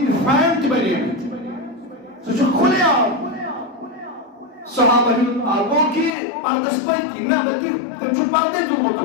فین تہِ بنیمٕتۍ سُہ چھُ کھُلے عام صحابن ہُنٛد گوٚو کہِ پردس پٔتۍ نہ بلکہِ تٔمۍ چھُ پردے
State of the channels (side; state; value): right; drops out; at 6.1 s